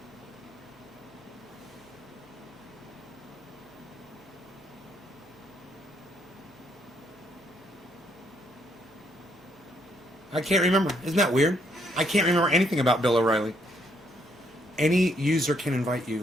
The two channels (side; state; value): both; normal; correlation 0.71